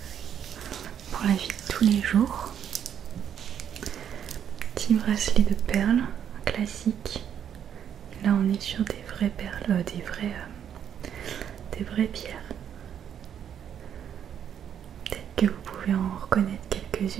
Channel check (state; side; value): quieter; left; 9.0 dB